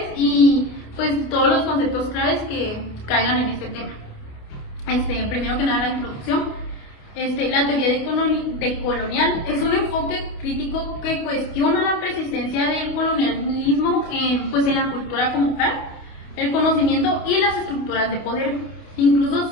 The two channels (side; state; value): right; late; 28 ms